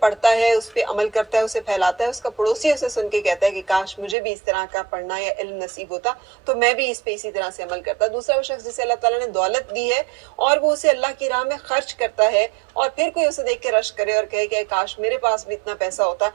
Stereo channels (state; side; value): drops out; left; at 4.2 s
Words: है, उस पर अमल करता है, उसे फैलाता है, उसका पड़ोसी उसे सुन के कहता है कि काश मुझे भी इस तरह का पढ़ना या इल्म नसीब होता तो मैं भी इस पे इसी तरह से अमल करता। दूसरा वो शख्स जिसे अल्लाह ताला ने दौलत दी है और वो उसे अल्लाह की राह में खर्च करता है और फिर कोई उसे देख के रश करे और कहे कि काश मेरे पास भी इतना पैसा होता